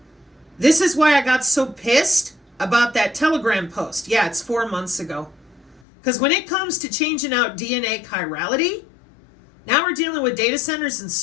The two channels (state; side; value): drops out; right; at 5.8 s